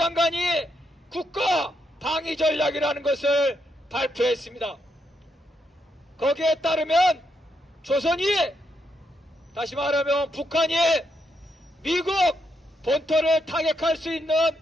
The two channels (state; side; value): normal; both; correlation 0.79